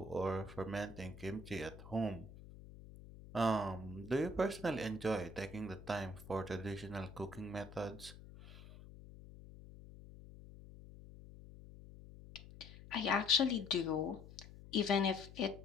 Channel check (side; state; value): left; noise; hum, 16 dB below the sound